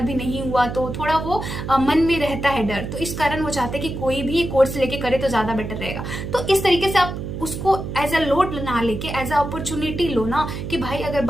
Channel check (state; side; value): noise; right; hum, 6 dB below the sound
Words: भी नहीं हुआ, तो थोड़ा वो मन में रहता है डर। तो इस कारण वो चाहते हैं कि कोई भी कोर्स लेके करे तो ज्यादा बेटर रहेगा। तो इस तरीके से आप उसको एज अ लोड ना लेके एज अ अपॉर्चुनिटी लो ना, कि भाई अगर